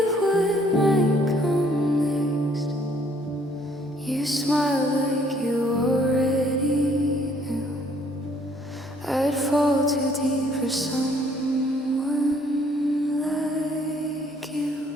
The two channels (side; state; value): both; normal; correlation 0.63